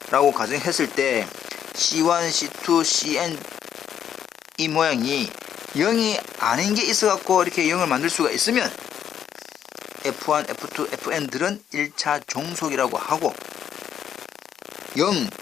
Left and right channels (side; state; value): right; quieter; 9.2 dB